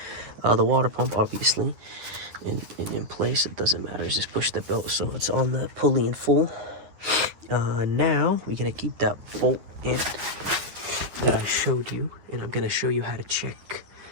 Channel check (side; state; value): left; late; 10 ms